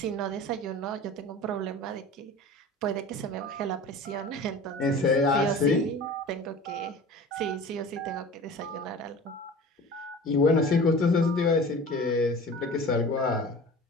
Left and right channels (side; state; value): both; normal; correlation 0.39